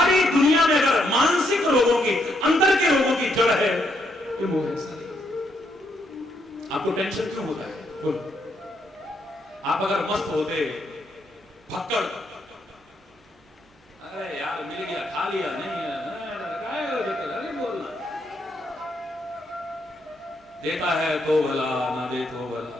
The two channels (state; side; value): normal; both; correlation 0.76